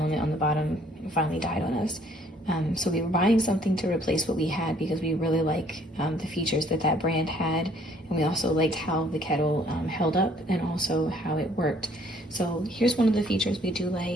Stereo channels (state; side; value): normal; both; correlation 0.61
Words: on the bottom finally died on us. So we were buying something to replace what we had because we really like the features that that brand had, and we also liked how the kettle held up and also how it worked. So here's one of the features we do